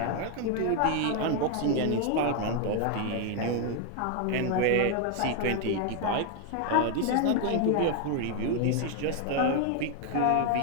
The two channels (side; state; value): both; different; correlation 0.00